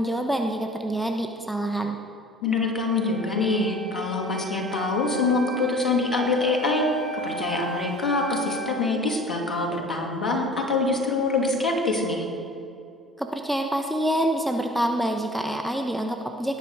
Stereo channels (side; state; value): both; normal; correlation 0.46